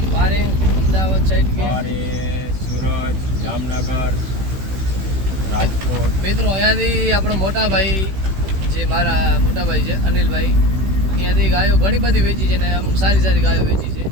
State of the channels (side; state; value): left; late; 16 ms